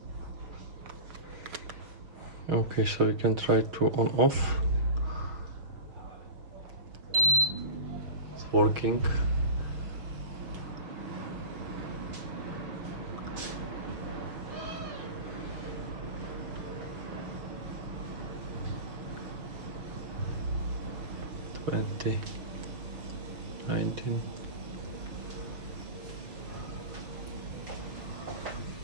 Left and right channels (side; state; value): left; late; 6.4 ms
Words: Okay, so we can try to on off. It's working. Twenty, 19.